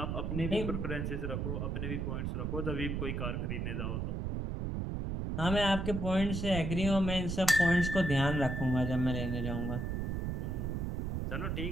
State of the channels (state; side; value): noise; right; rumble, 1 dB below the sound